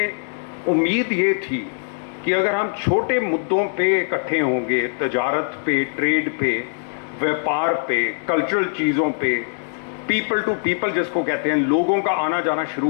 उम्मीद ये थी कि अगर हम छोटे मुद्दों पे इकट्ठे होंगे, तजारत पे, ट्रेड पे, व्यापार पे, कल्चरल चीज़ों पे, पीपल टू पीपल जिसको कहते हैं, लोगों का आना जाना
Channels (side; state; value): right; silent; digital silence